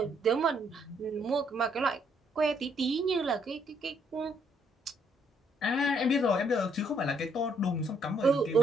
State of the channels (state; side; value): normal; both; correlation 0.70